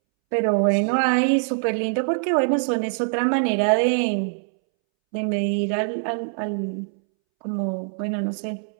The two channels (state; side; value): silent; left; 63 dB below the other